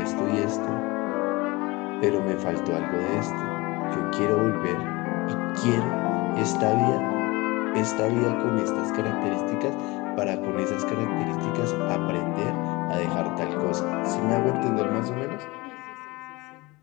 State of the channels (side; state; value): right; quieter; 23.2 dB